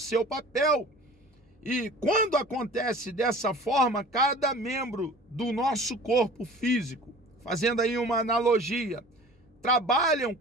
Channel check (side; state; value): both; normal; correlation 0.44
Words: papel. E quando acontece dessa forma, cada membro do nosso corpo físico, fazendo aí uma analogia, trabalham